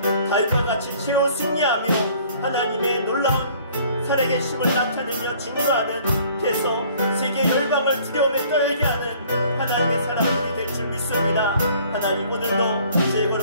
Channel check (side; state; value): both; inverted; correlation -0.55